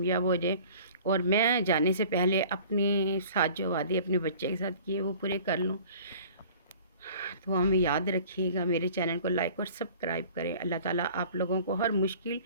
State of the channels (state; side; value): inverted; both; correlation -0.48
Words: ہو جائے، اور میں جانے سے پہلے اپنے ساتھ جو وعدے اپنے بچے کے ساتھ کیے وہ پورے کر لوں۔ دعا میں یاد رکھیے گا، میرے چینل کو لائک اور سبسکرائب کریں۔ اللہ تعالیٰ آپ لوگوں کو ہر مشکل،